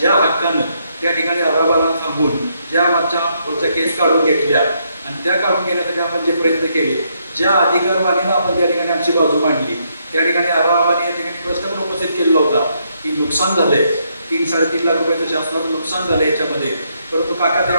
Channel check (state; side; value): inverted; both; correlation -0.75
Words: हक्कानं त्या ठिकाणी आबाबाला थांबून ज्या आमच्या पुढच्या केस काढून घेतल्या आणि त्या काढून घेण्यासाठी आपण जे प्रयत्न केले, ज्या अधिकारवाणीनं आपण त्या ठिकाणी आमची बाजू मांडली, त्या ठिकाणी आबाबाने या ठिकाणी प्रश्न पण उपस्थित केलेला होता की नुकसान झालंय, 3-3.5 लाख रुपयाचं शासनाचं नुकसान झालं याच्यामध्ये. परंतु काका